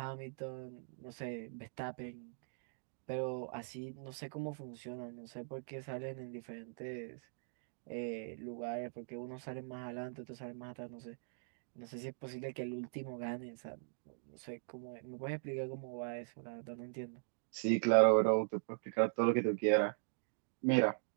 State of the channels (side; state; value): left; silent; digital silence